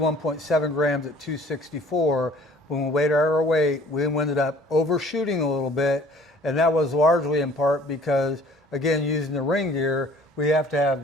grams at 264. When we weighed our weight, we ended up overshooting a little bit. And that was largely in part because, again, using the ring gear, we have to have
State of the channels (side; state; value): both; normal; correlation 0.53